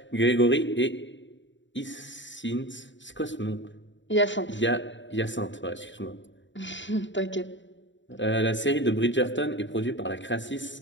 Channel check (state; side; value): late; right; 0.54 ms